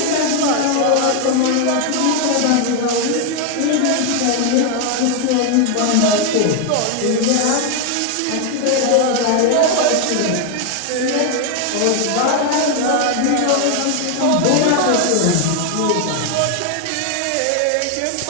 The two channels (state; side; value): different; both; correlation 0.01